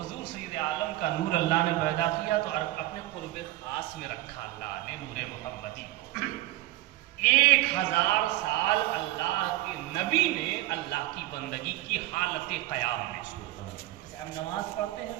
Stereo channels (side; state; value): left; quieter; 16.9 dB